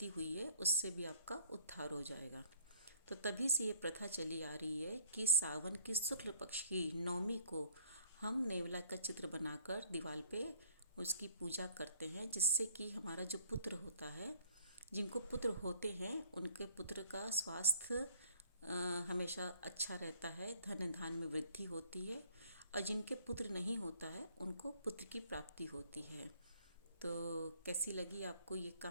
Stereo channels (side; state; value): both; inverted; correlation -0.59